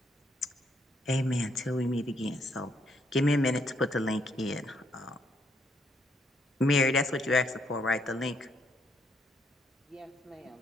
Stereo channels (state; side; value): normal; both; correlation 0.73